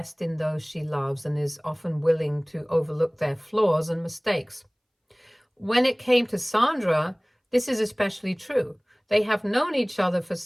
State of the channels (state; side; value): identical; both; correlation 1.00